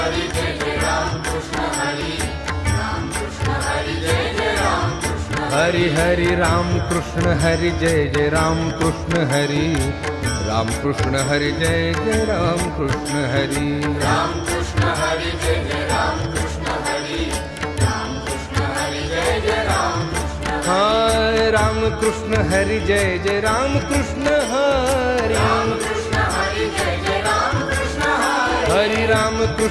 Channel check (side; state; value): both; identical; correlation 1.00